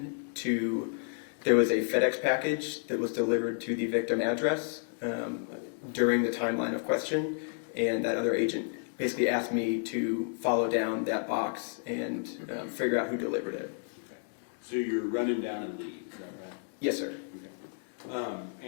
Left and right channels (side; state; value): right; silent; 57 dB below the other